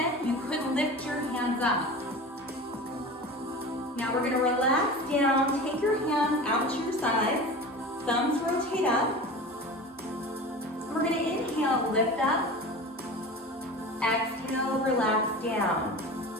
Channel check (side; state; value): both; normal; correlation 0.34